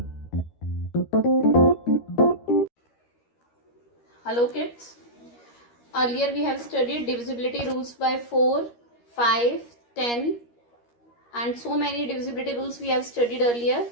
kids. Earlier we have studied divisibility rules by 4, 5, 10 and so many divisibility rules we have studied earlier.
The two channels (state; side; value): late; right; 13 ms